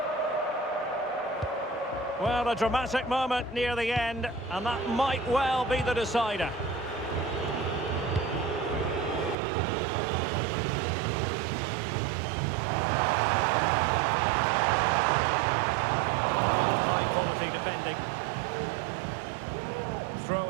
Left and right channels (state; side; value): drops out; left; at 9.3 s